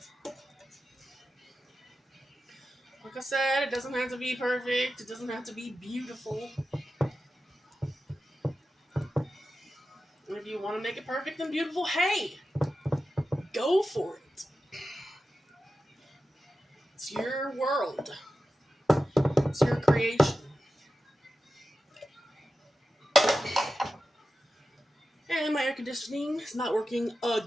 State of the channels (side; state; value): both; normal; correlation 0.92